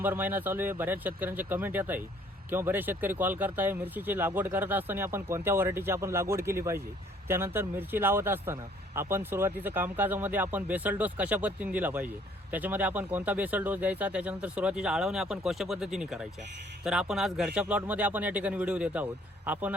महिना चालू आहे. बऱ्याच शेतकऱ्यांचे कमेंट येत आहे किंवा बरेच शेतकरी कॉल करताय मिरचीची लागवड करत असताना आपण कोणत्या व्हरायटीची आपण लागवड केली पाहिजे. त्यानंतर मिरची लावत असताना आपण सुरुवातीचं कामकाजामध्ये आपण बेसल डोस कशा पद्धतीने दिला पाहिजे, त्याच्यामध्ये आपण कोणता बेसल डोस द्यायचा, त्याच्यानंतर सुरुवातीच्या आळवण्या आपण कशा पद्धतीने करायच्या. तर आपण आज घरच्या प्लॉटमध्ये आपण या ठिकाणी व्हिडिओ देत आहोत. आपण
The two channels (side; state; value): both; normal; correlation 0.60